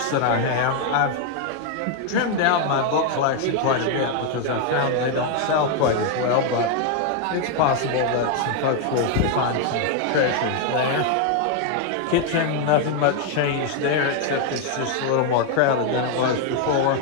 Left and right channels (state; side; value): different; both; correlation 0.01